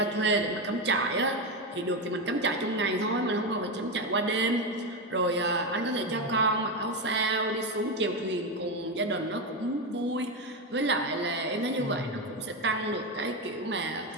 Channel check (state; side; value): normal; both; correlation 0.12